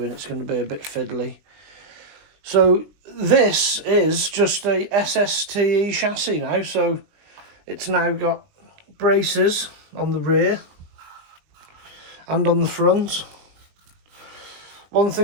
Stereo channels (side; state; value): left; late; 20 ms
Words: It's going to be a bit fiddly. So this is just a Sste chassis now. So it's now got braces on the rear and on the front. One